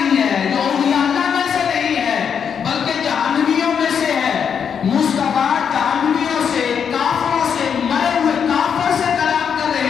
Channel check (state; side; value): quieter; right; 7.3 dB